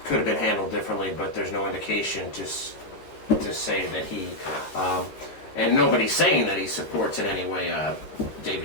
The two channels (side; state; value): right; late; 14 ms